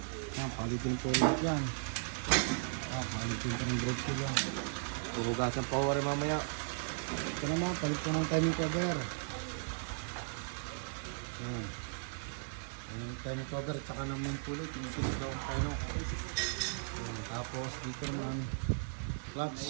Ayan, palitin po ulit yan. Ayan, palitin po ng brake shoe yan. Huhugasan pa rin mamaya. Ito naman, palit po ng timing cover. Ayan. Yung timing cover, tsaka ng main pulley, tinitinag daw ang tayo. Ayan. Tapos dito naman,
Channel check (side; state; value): left; silent; digital silence